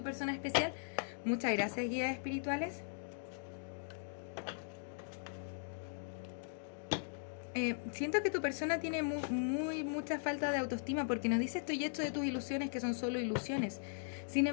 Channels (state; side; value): silent; right; digital silence